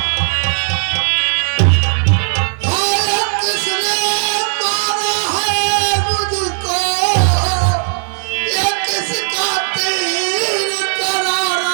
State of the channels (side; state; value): left; silent; digital silence